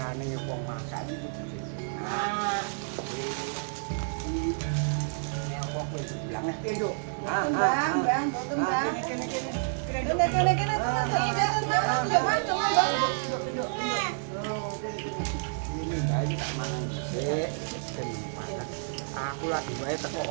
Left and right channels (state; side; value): silent; left; 58 dB below the other